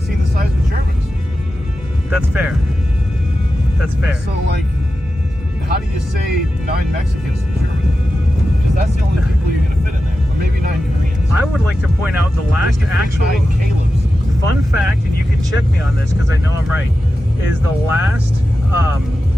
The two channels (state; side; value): normal; both; correlation 0.92